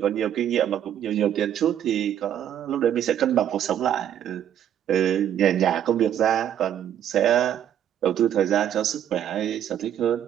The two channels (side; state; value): left; quieter; 10.2 dB